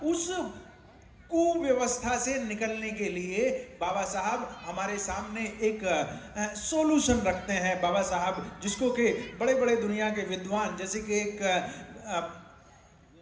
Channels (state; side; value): identical; both; correlation 1.00